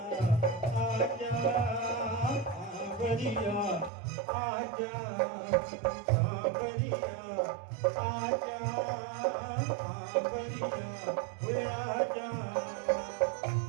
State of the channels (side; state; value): left; drops out; at 3.9 s